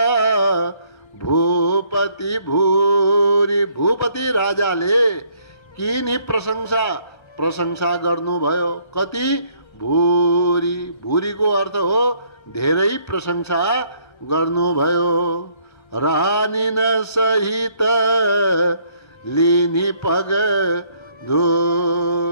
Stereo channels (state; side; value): late; right; 1.3 ms